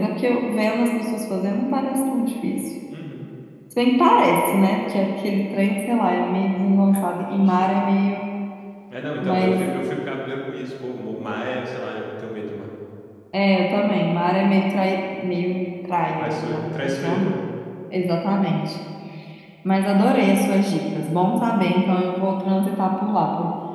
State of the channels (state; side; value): identical; both; correlation 1.00